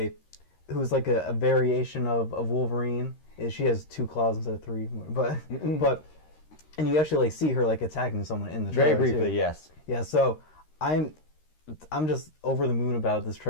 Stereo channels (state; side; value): late; right; 13 ms